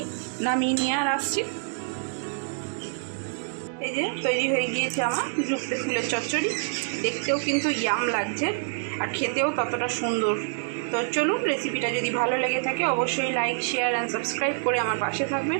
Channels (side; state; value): left; silent; 60 dB below the other